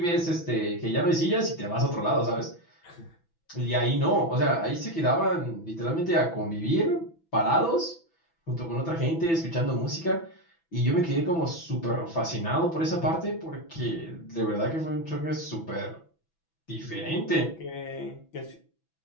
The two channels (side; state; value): right; late; 6.0 ms